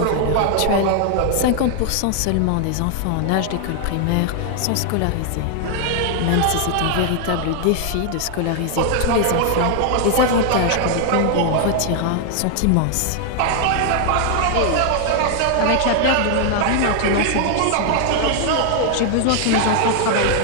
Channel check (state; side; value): different; both; correlation 0.00